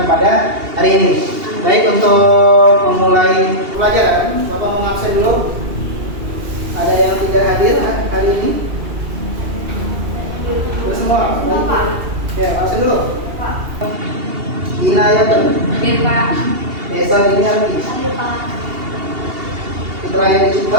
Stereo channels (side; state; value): left; late; 2.8 ms